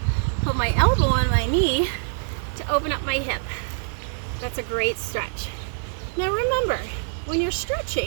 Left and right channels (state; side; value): silent; left; digital silence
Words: put my elbow on my knee to open up my hip. That's a great stretch. Now remember, when you're